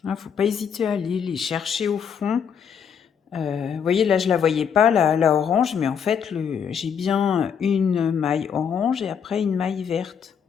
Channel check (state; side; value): quieter; right; 7.4 dB